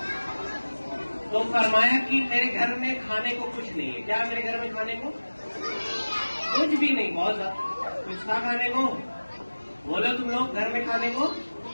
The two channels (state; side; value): inverted; both; correlation -1.00